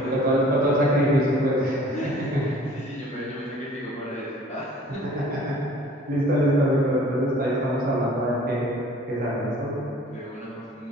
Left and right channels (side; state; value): both; normal; correlation 0.51